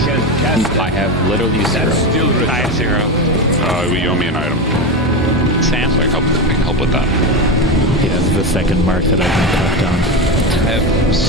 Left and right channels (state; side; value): normal; both; correlation 0.17